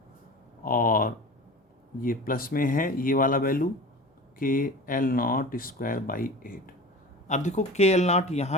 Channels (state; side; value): normal; both; correlation 0.35